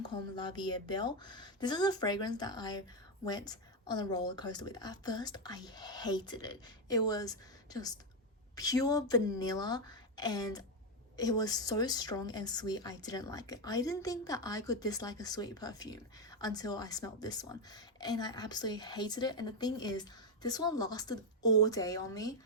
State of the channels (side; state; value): both; normal; correlation 0.05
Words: La Vie Belle. This is a fragrance that I went on a roller coaster with. At first I hated it. It was just pure vanilla, and it was so strong and sweet. I didn't like it. I didn't think that I could dislike a sweet perfume until I smelled this one, and I absolutely hated it. And the thing is, this one lasted all day on me.